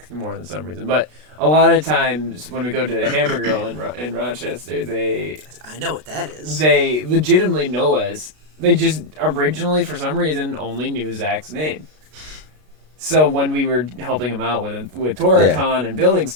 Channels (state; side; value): late; left; 33 ms